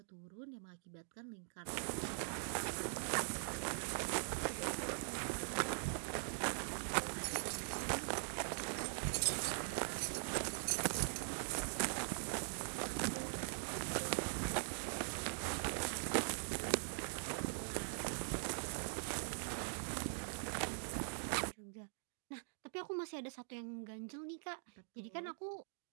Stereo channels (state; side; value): silent; left; digital silence